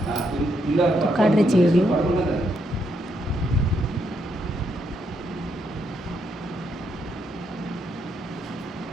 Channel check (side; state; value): both; normal; correlation 0.77